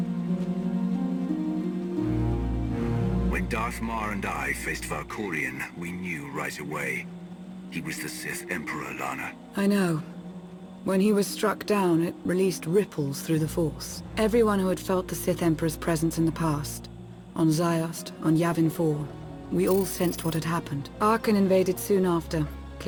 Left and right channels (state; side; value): identical; both; correlation 1.00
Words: When Darth Mar and I faced Valkorion, we knew right away. He was the Sith Emperor, Lana. I know. When he was struck down, it released ripples through the Force. Everyone who had felt the Sith Emperor's presence in the past, on Ziost, on Yavin 4, we all sensed what had happened. Arkan invaded soon after,